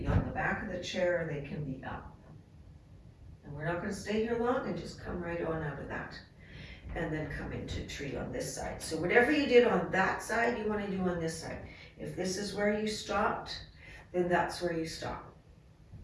on the back of the chair or they can be up. And we're not going to stay here long, and just come right on out of that. And then come into tree on this side. So whatever you did on that side, you want to do on this side. If this is where you stopped, then that's where you stop.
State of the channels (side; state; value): both; identical; correlation 1.00